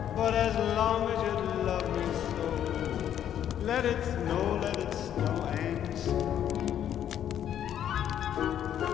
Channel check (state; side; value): quieter; right; 10.2 dB